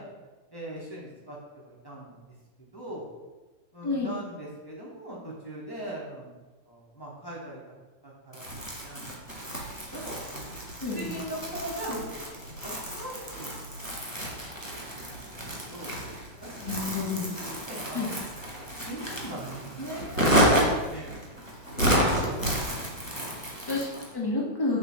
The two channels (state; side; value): late; right; 1.1 ms